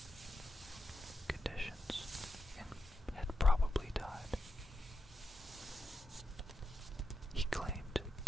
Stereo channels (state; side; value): normal; both; correlation 0.87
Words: conditions and had probably died. He claimed